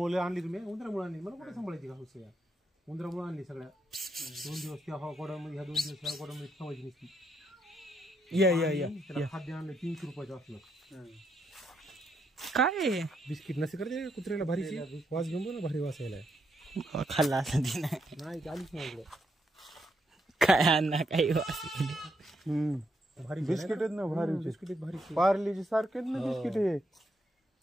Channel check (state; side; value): normal; both; correlation 0.78